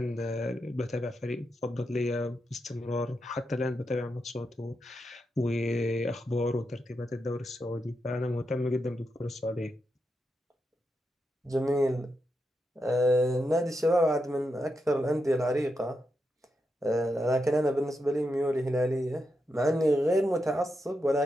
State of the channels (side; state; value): both; normal; correlation 0.85